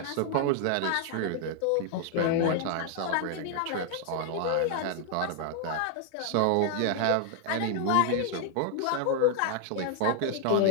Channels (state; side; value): different; both; correlation 0.00